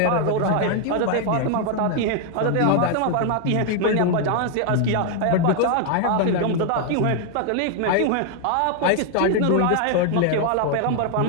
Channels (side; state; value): both; different; correlation 0.00